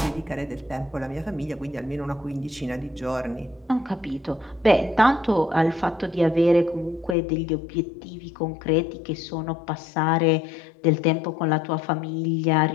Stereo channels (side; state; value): right; drops out; at 7.2 s